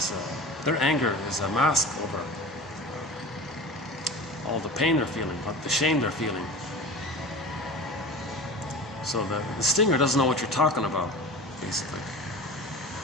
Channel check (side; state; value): both; normal; correlation 0.35